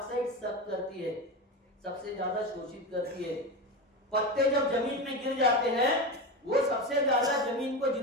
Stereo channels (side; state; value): both; normal; correlation 0.20